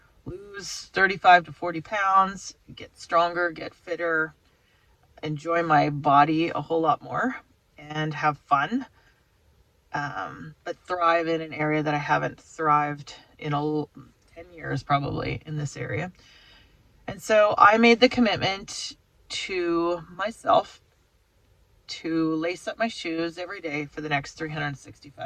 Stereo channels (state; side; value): identical; both; correlation 1.00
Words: lose 35 to 40 pounds, get stronger, get fitter, enjoy my body a whole lot more, and have fun, but thrive in an area that I haven't thrived in 10 years probably in this area. And so I made the commitment to myself to lace up my shoes every day for the next